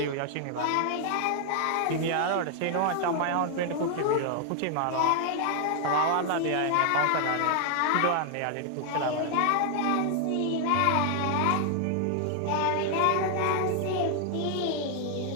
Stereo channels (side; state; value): both; different; correlation 0.00